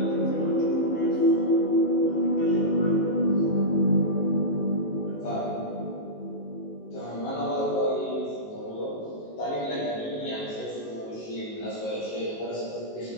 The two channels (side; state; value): right; late; 19 ms